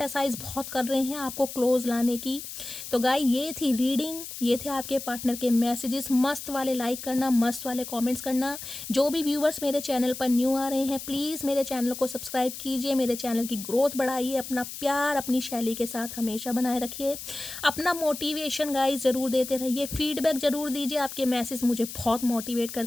बहुत कर रहे हैं आपको क्लोज लाने की। तो गाइस ये थी रीडिंग, ये थे आपके पार्टनर के मैसेजेस। मस्त वाले लाइक करना, मस्त वाले कमेंट्स करना। जो भी व्यूवर्स मेरे चैनल पर न्यू आ रहे हैं, प्लीज़ मेरे चैनल को सब्सक्राइब कीजिए, मेरे चैनल की ग्रोथ बढ़ाइए। अपना प्यार अपनी शैली के साथ हमेशा बनाए रखिए। अपना मोटिवेशन गाइस ज़रूर देते रहिए, फीडबैक ज़रूर दीजिए, आपके मैसेज मुझे बहुत मोटिवेट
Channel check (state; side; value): noise; left; hiss, 10 dB below the sound